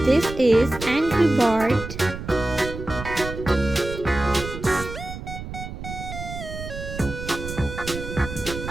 This is Angry Bird.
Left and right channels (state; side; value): noise; right; rumble, 9 dB below the sound